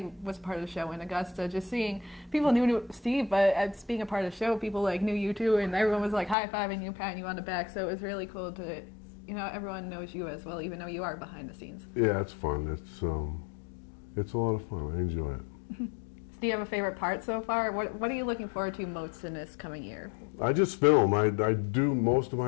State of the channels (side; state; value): right; drops out; at 6.4 s